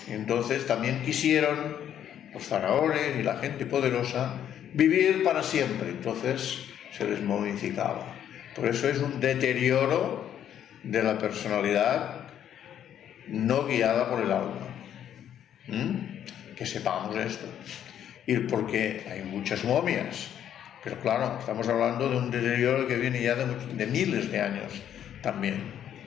Entonces también quisieron los faraones y la gente poderosa vivir para siempre, entonces se les momificaba. Por eso es un deterioro de la personalidad no guiada por el alma. Que sepamos esto. Y porque hay muchas momias, pero claro, estamos hablando de un deterioro que viene ya de miles de años también.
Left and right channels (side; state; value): right; quieter; 10.0 dB